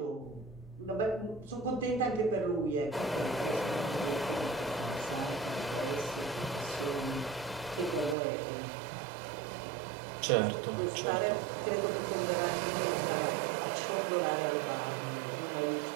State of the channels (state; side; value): drops out; left; at 8.2 s